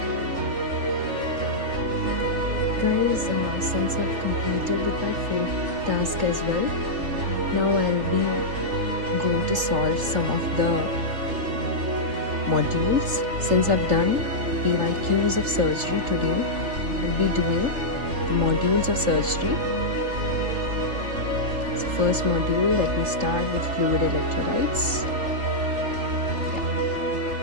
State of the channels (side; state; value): left; late; 3.4 ms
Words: Guys, since I've completed with my 4th task as well, now I'll be going to solve some of the modules. Since I've done PYQs of surgery today, I'll be doing the modules of surgery. So first module, let me start with fluid electrolytes.